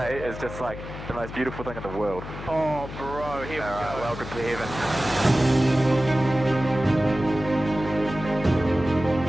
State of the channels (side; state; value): left; noise; hum, 11 dB below the sound